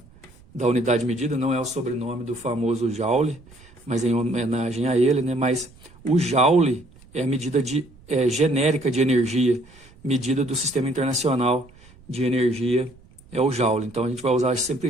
unidade de medida, não é o sobrenome do famoso Joule, mas em homenagem a ele, né? Mas o Joule é a medida genérica de energia, medida do Sistema Internacional de Energia, é o Joule. Então a gente vai usar sempre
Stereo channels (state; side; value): noise; right; rumble, 25 dB below the sound